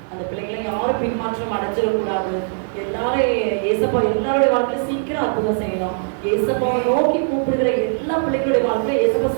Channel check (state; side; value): silent; left; 66 dB below the other